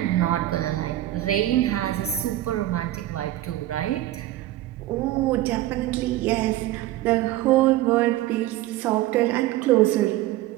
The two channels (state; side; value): quieter; left; 15.1 dB